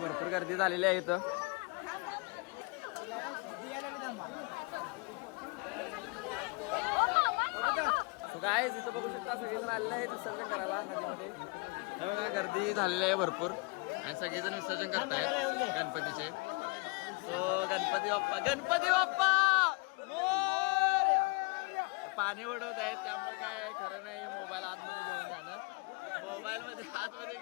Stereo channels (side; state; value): right; quieter; 29.5 dB